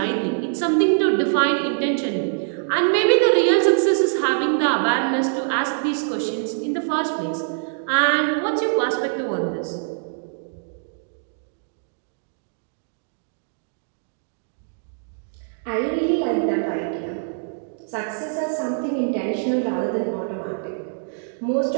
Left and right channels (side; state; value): left; silent; digital silence